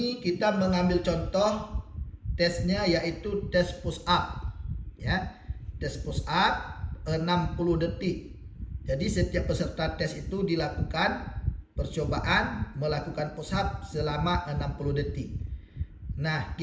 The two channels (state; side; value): identical; both; correlation 1.00